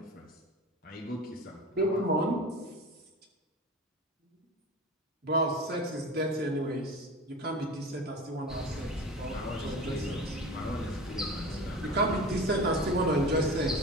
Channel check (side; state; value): both; normal; correlation 0.33